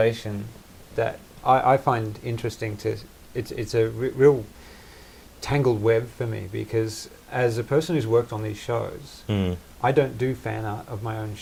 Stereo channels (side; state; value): both; identical; correlation 1.00